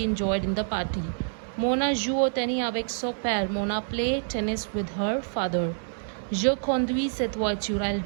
enjoyed in the party. Mona joue au tennis avec son père. Mona play tennis with her father. Je conduis cette voiture. I'll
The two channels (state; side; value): silent; left; digital silence